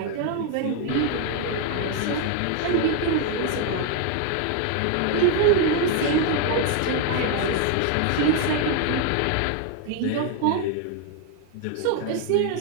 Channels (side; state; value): both; different; correlation 0.00